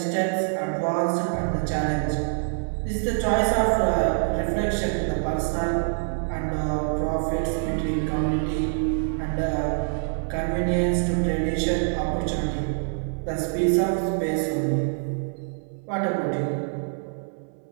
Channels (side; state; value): left; silent; 61 dB below the other